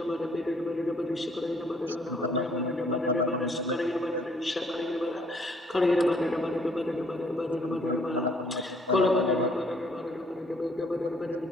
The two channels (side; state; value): both; normal; correlation 0.63